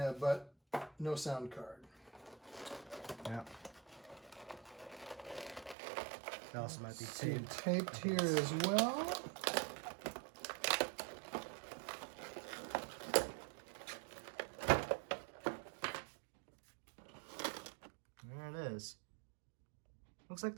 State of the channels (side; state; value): left; drops out; at 5.8 s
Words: no sound card. Yeah. That also might be taped. taped. Taped here as well. There it is. Looks like